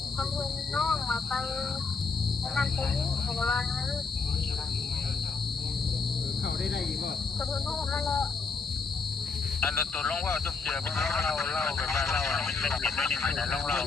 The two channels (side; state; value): right; quieter; 4.6 dB